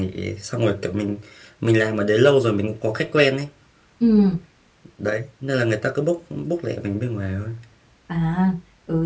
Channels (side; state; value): both; identical; correlation 1.00